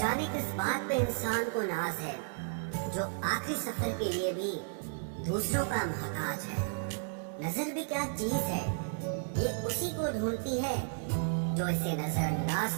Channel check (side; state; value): left; silent; digital silence